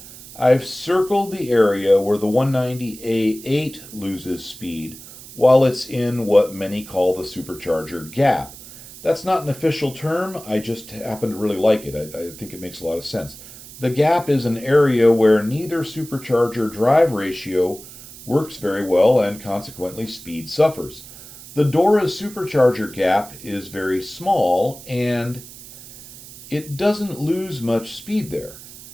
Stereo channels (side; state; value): right; noise; hiss, 17 dB below the sound